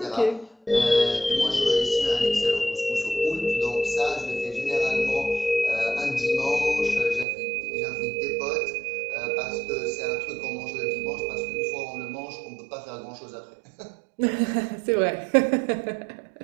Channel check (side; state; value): left; drops out; at 7.2 s